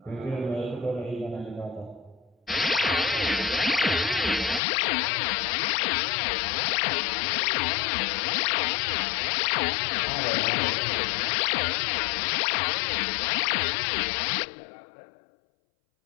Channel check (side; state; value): right; drops out; at 4.6 s